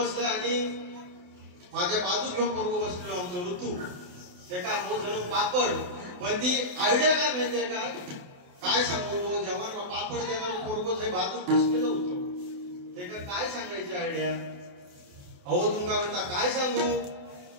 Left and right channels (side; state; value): left; late; 28 ms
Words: आणि माझ्या बाजूक घेऊन पोरगो बसलो आमचं ऋतू ते का हो झालं पापड. पण ती आयडिया काय माहितीये का काय सांगतो जेव्हा पापड देणार पोरगो जे बाजूक बसलेलं होतं ते का काय सांगायची आयडिया. अहो तुमका म्हणता काय सांगू